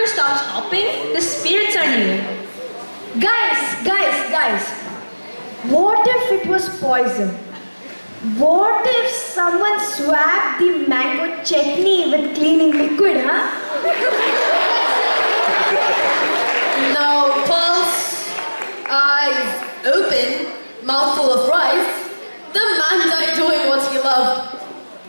stops hopping, the spirits are near. Guys, what if it was poison? What if someone swabbed the mango chutney with cleaning liquid, huh? No pulse, eyes open, mouthful of rice. The man died doing what he loved.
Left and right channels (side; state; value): both; inverted; correlation -1.00